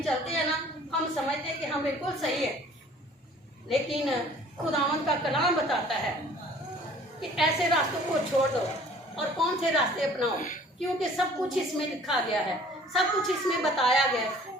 चलते हैं ना, हम समझते हैं कि हम बिल्कुल सही है, लेकिन खुदावंद का कलाम बताता है कि ऐसे रास्तों को छोड़ दो और कौन से रास्ते अपनाओ, क्योंकि सब कुछ इसमें लिखा गया है, सब कुछ इसमें बताया गया है।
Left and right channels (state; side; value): normal; both; correlation 0.52